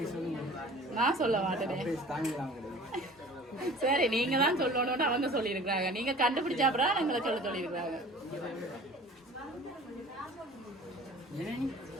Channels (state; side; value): normal; both; correlation 0.45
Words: நான் சொல்ல மாட்டேனே சரி நீங்க தான் சொல்லணும்னு அவங்க சொல்லி இருக்கிறாங்க நீங்க கண்டுபிடிச்சா அப்புறம் எங்களை சொல்லி இருக்கிறாங்க